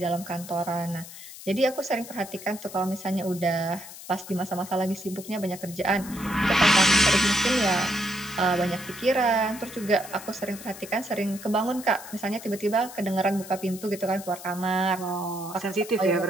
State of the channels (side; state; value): left; noise; hiss, 14 dB below the sound